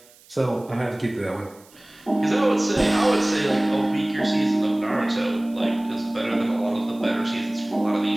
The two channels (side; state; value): right; noise; hiss, 27 dB below the sound